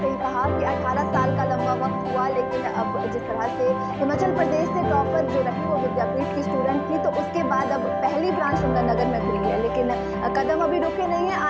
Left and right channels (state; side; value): identical; both; correlation 1.00